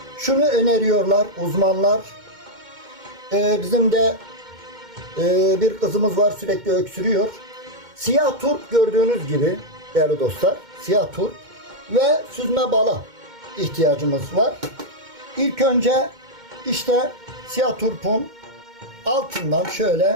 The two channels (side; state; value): left; late; 2.2 ms